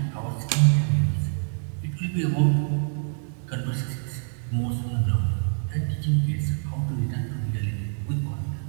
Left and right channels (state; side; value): silent; left; digital silence